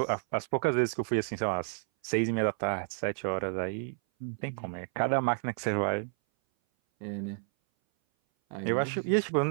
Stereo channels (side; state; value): left; silent; 57 dB below the other